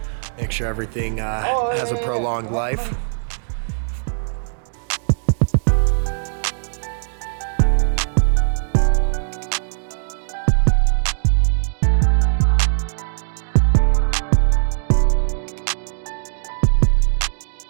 Make sure everything has a prolonged life.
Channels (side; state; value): left; silent; digital silence